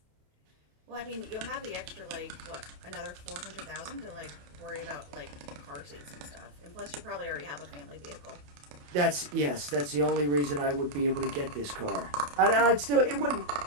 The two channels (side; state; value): left; late; 28 ms